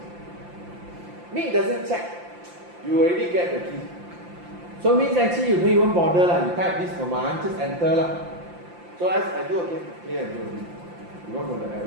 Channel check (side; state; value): left; late; 5.8 ms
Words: Me, it doesn't check. You already get the key. So means actually you don't even bother. You type this command, just enter. So as I do again, clear and do again. You won't know the